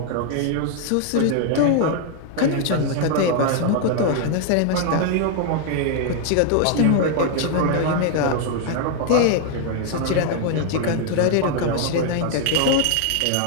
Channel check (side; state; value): both; different; correlation 0.00